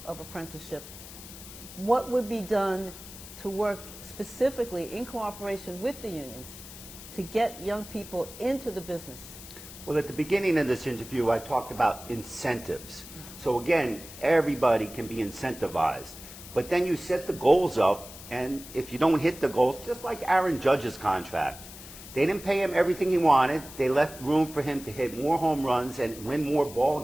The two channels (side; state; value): left; noise; hiss, 15 dB below the sound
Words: of apprenticeship, what would be done to work specifically in cooperation with the unions to get young people into the business? Well, at the beginning of this interview, I talked about incentives. So again, everybody can be incentivized. But then you set the goals up, and if you don't hit the goals, just like Aaron Judge's contract, they didn't pay him everything he wanted. They left room for him to hit more home runs and win more ball